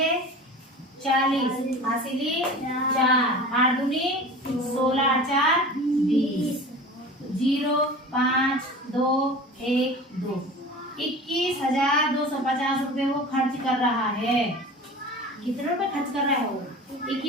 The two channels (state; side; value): normal; both; correlation 0.37